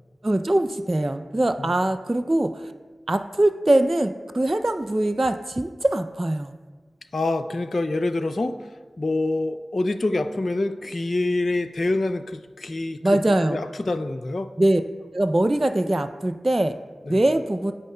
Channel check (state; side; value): normal; both; correlation 0.96